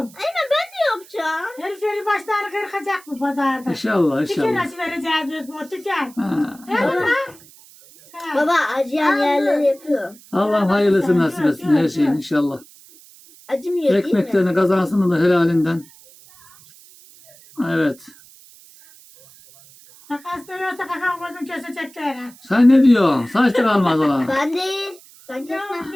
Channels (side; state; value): right; noise; hiss, 24 dB below the sound